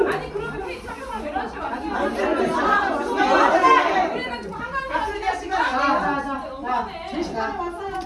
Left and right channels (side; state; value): both; identical; correlation 1.00